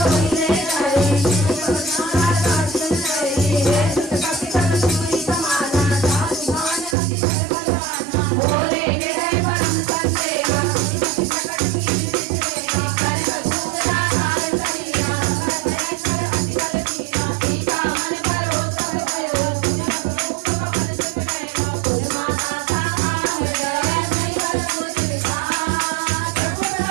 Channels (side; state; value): left; drops out; at 7.0 s